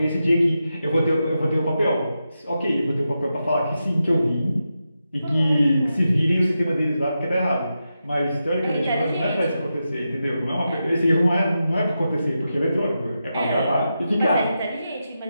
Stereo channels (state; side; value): inverted; both; correlation -0.88